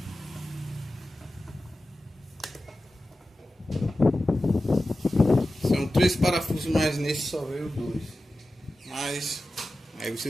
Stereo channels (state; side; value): normal; both; correlation 0.94